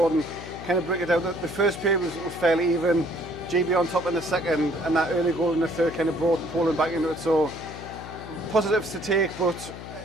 kind of break it down. The first period was fairly even. GB on top in the second, and that early goal in the third kind of brought Poland back into it. So positives to take, but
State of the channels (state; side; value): noise; left; hum, 12 dB below the sound